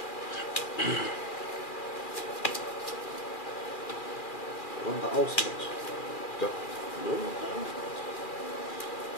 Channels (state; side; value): late; right; 2.4 ms